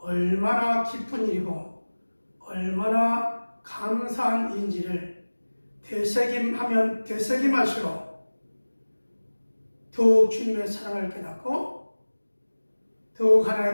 기쁜 일이고 얼마나 감사한 일인지를 되새김하면 되새김할수록 더욱 주님의 사랑을 깨닫고 더욱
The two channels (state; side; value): inverted; both; correlation -1.00